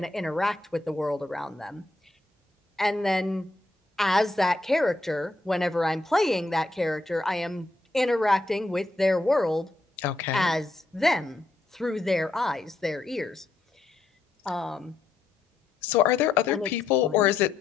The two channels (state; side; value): quieter; right; 3.0 dB